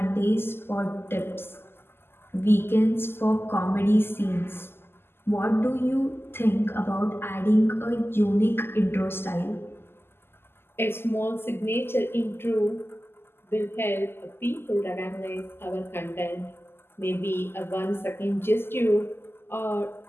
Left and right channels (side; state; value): right; late; 0.11 ms